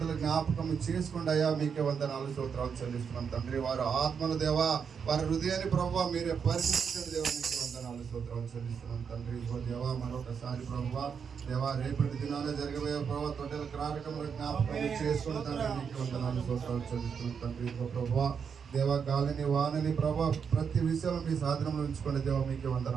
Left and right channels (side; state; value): left; quieter; 6.6 dB